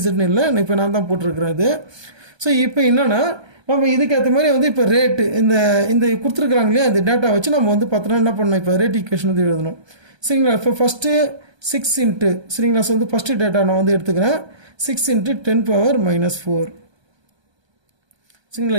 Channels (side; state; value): left; late; 1.3 ms